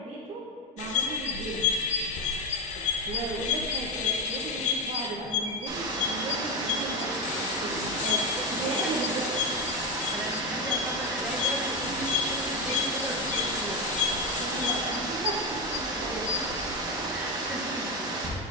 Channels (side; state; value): both; normal; correlation 0.14